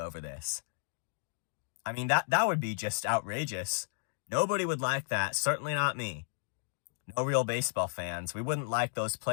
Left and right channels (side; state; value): right; silent; digital silence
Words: this. I mean, that would be just outrageous. Nobody would like that, certainly not me. No real baseball fans. We wouldn't like those